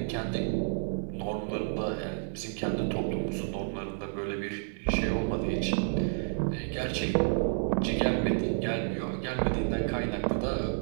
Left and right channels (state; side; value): silent; left; 58 dB below the other